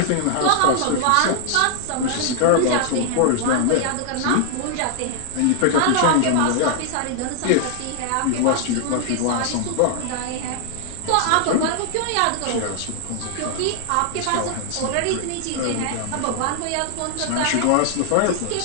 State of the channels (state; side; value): different; both; correlation 0.00